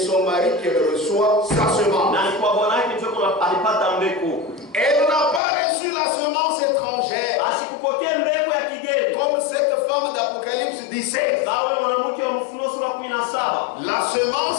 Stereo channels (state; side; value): drops out; right; at 5.4 s